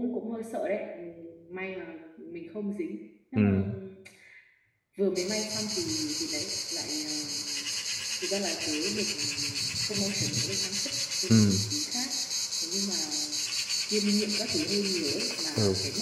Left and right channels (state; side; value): identical; both; correlation 1.00